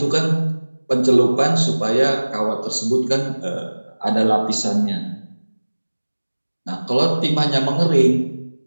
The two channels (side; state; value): both; inverted; correlation -1.00